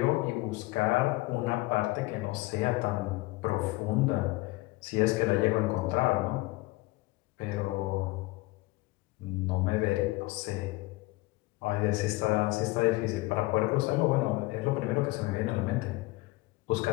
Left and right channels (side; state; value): right; quieter; 21.4 dB